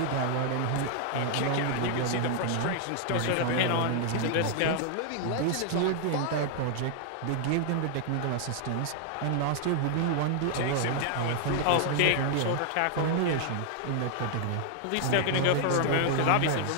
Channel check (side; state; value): both; different; correlation 0.00